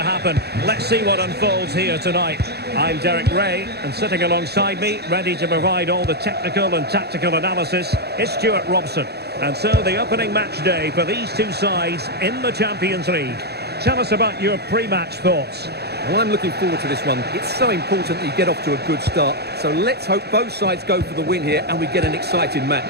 Let's see what unfolds here tonight. I'm Derek Ray, and sitting alongside me, ready to provide all the technical and tactical analysis, is Stuart Robson. And so the opening match day for these two sides in the Champions League. Tell us about your pre-match thoughts. Well, I'm looking forward to this one. It's so important that you get off to a good start. So let's hope both sides go for the win here and we get an exciting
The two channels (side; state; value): left; late; 0.47 ms